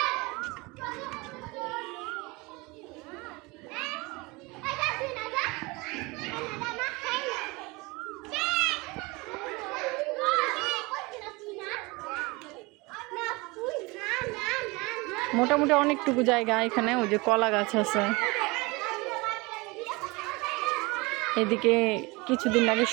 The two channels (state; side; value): quieter; left; 25.0 dB